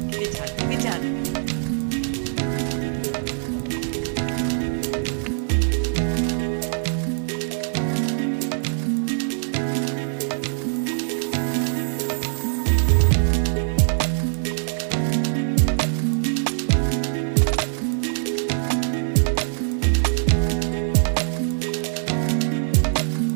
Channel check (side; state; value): left; silent; digital silence